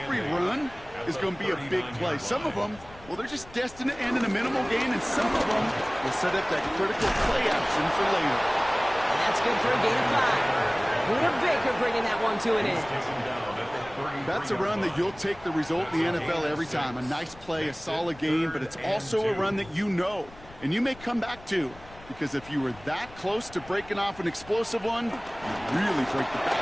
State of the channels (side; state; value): left; noise; rumble, 21 dB below the sound